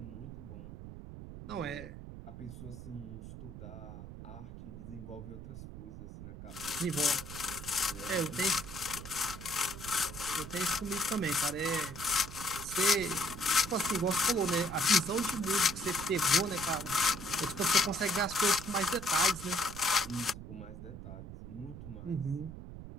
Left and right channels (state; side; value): noise; right; rumble, 11 dB below the sound